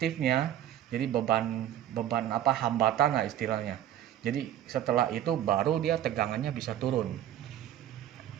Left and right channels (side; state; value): left; quieter; 11.8 dB